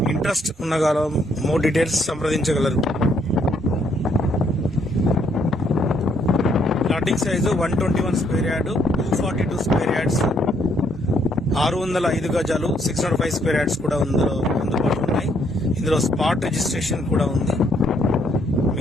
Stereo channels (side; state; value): both; normal; correlation 0.70